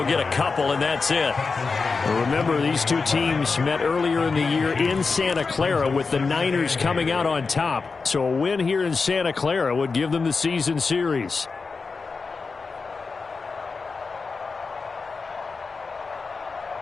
get a couple, and that's it. Remember, these two teams met earlier in the year in Santa Clara with the Niners coming out on top. So a win here in Santa Clara would give them the season series.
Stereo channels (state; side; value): quieter; right; 4.5 dB